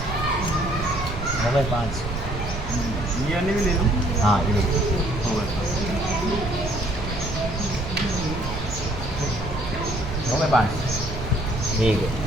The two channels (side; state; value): right; noise; rumble, 6 dB below the sound